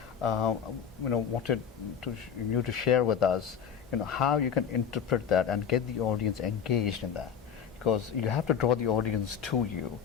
Wanted you to share with us, how you can interpret that and get the audience engaged in that, because you have to draw the audience to you,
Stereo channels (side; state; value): right; quieter; 7.6 dB